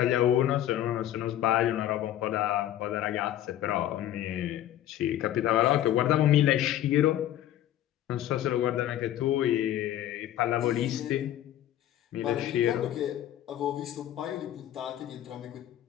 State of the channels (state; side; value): quieter; right; 12.3 dB